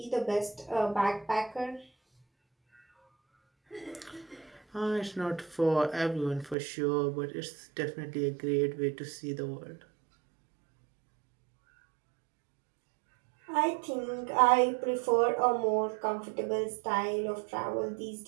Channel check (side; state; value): left; drops out; at 6.6 s